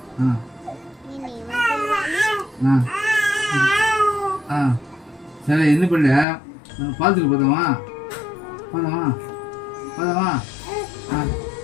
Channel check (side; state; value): right; drops out; at 6.2 s